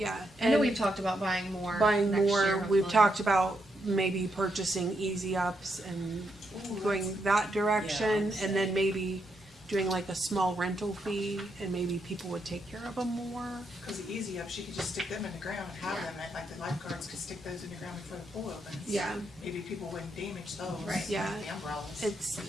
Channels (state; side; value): normal; both; correlation 0.80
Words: I know and we've talked about buying more. buying next more. year, We've hopefully. talked about maybe purchasing easy ups and ooh, going that direction, Yeah, I'd and then say. maybe doing like a small rental fee, and maybe people would take care of them more. because the easy ups, you could just stick them in the ground and have them, and like the lifeguards could stick those in the ground before the pool opens. Yeah. Maybe people wouldn't damage those. Right. Yeah. The umbrellas. It's